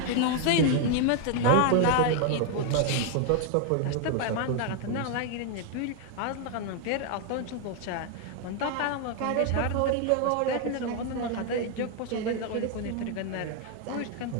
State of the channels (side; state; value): both; different; correlation 0.00